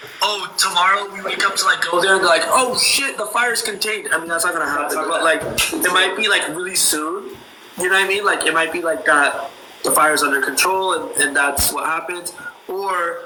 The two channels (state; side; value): identical; both; correlation 1.00